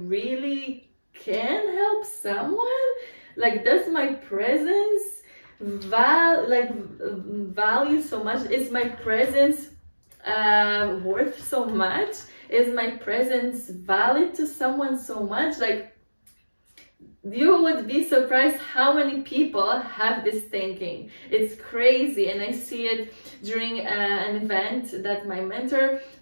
really can help someone? Like, does my presence value so much? Is my presence worth so much? Is my presence valid to someone so much? Like, you would be surprised how many people have this thinking. It's crazy, and I see it during an event that my mentor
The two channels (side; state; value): both; inverted; correlation -1.00